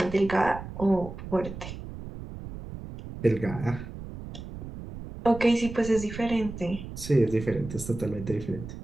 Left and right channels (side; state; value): right; noise; rumble, 11 dB below the sound